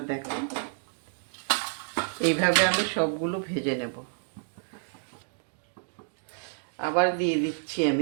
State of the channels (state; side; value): silent; left; digital silence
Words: দেখো। এইভাবে আমি সবগুলো ভেজে নেব। আবার দিয়ে দিচ্ছি